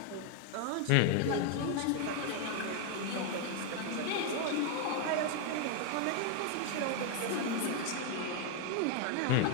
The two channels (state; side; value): different; both; correlation 0.01